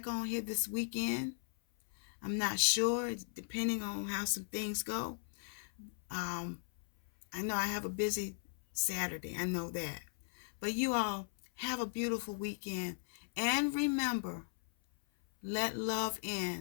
on here this weekend. I'm not sure, depending on how some things go. I know I have a busy Saturday. I know that. But you all have a beautiful weekend. And remember, let love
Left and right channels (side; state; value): right; silent; 53 dB below the other